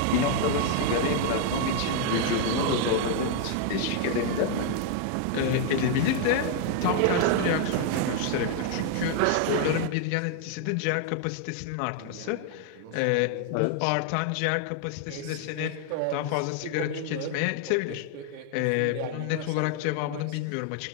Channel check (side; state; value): both; different; correlation 0.00